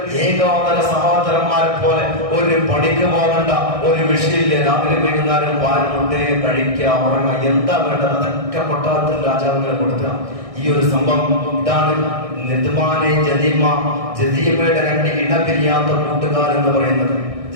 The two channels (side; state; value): left; late; 1.6 ms